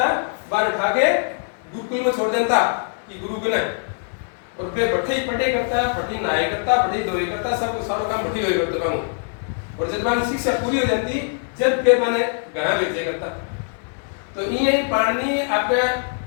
बाहर उठा के गुरुकुल में छोड़ देता कि गुरु बने और वे बैठे ही पढ़े करता, पढ़ी नहाए करता, पढ़ी धोए करता, सब सारा काम बैठी हुई करते बाबू। और जब मानी शिक्षा पूरी हो जाती जब फिर मैंने गया भेजे करता। तो ये पाणिनि आपके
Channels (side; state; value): right; silent; digital silence